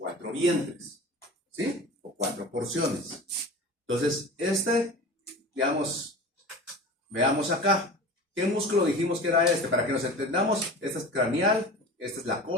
vientres, ¿sí? O 4 porciones. Entonces, digamos, veamos acá. ¿Qué músculo dijimos que era este? Para que nos entendamos, este es craneal, esta es la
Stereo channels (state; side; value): normal; both; correlation 0.35